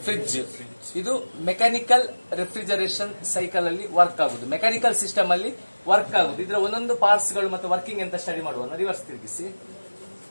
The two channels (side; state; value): both; inverted; correlation -1.00